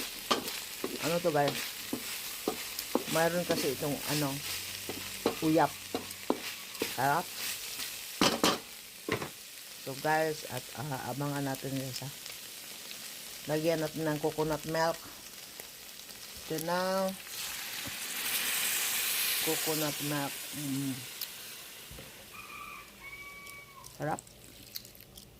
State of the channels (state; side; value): identical; both; correlation 1.00